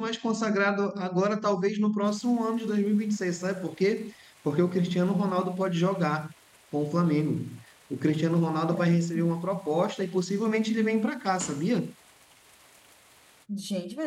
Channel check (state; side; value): identical; both; correlation 1.00